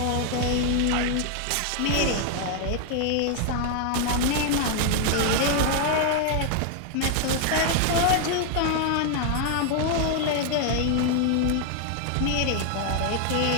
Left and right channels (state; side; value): different; both; correlation 0.00